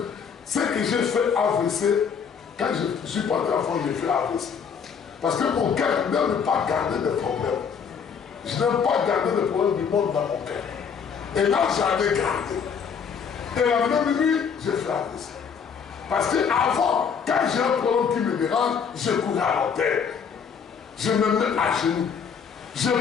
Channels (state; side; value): quieter; right; 6.7 dB